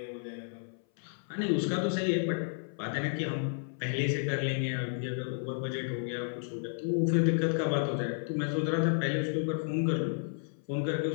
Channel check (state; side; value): silent; right; 56 dB below the other